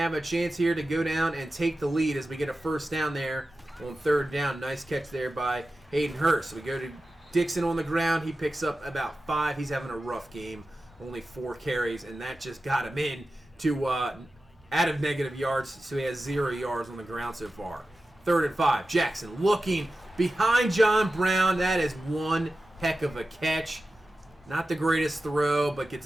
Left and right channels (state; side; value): normal; both; correlation 0.94